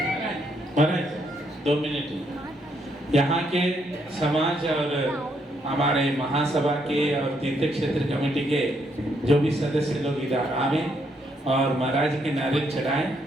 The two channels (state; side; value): normal; both; correlation 0.74